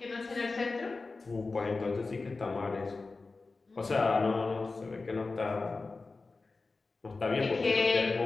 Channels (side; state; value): right; quieter; 3.8 dB